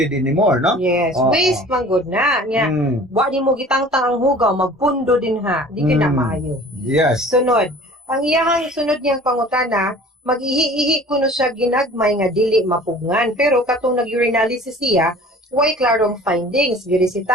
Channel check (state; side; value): normal; both; correlation 0.46